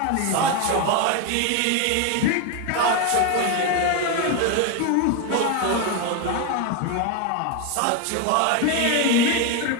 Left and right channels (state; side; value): different; both; correlation 0.02